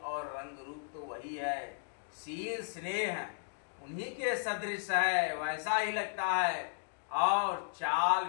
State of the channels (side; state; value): right; silent; digital silence